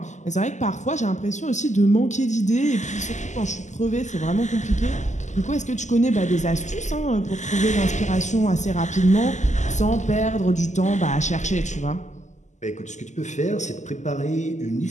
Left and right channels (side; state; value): right; late; 0.34 ms